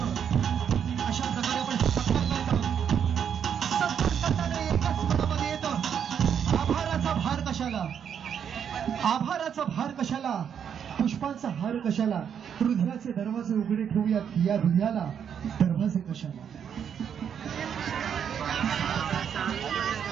अशा प्रकारे आपण सत्कार करत आहोत। सत्कार करताना एकच मनामध्ये येतं, आभाराचा भार कशाला, आभाराचा भार कशाला, पुष्पांचा हार कशाला, हृदयाचे दरवाजे उघडे ठेवूयात या हृदयाला दरवाजे कशाला।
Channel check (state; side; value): quieter; left; 8.1 dB